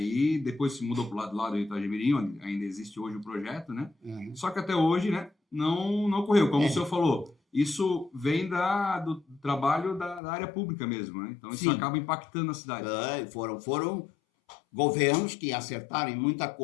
E depois se mudou para o lado do Rio Itajaí-Mirim, onde ainda existe hoje o projeto, né? Só que até hoje, né, não ocorreu. Como o senhor falou, isso vem do trabalho da área pública mesmo. Né? Então isso acaba impactando a cidade. Foram governos que acertaram em muita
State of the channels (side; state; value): right; drops out; at 10.2 s